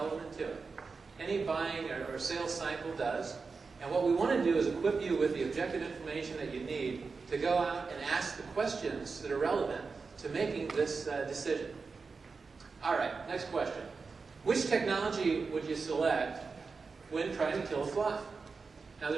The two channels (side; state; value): left; quieter; 4.6 dB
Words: to it. Any buying or sales cycle does. And what we want to do is equip you with the objective information that you need to go out and ask the questions that are relevant to making this decision. All right, next question. Which technology would you select when trying to kill a fly? Now,